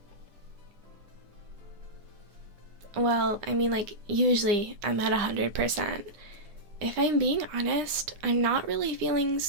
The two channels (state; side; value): late; left; 9.8 ms